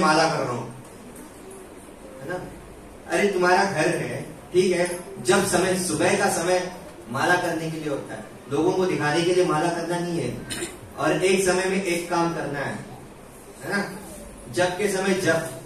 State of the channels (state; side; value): identical; both; correlation 1.00